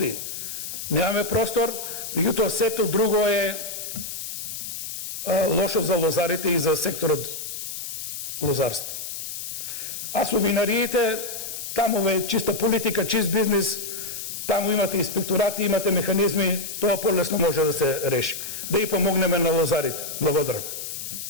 немаме простор, меѓутоа сето друго е лошо за лозарите и за секторот лозарство. А со винариите, таму е чиста политика, чист бизнис, таму имате инспекторати, имате механизми, тоа полесно може да се реши. Да и помогнеме на лозарите. Благодарам.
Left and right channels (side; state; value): left; noise; hiss, 7 dB below the sound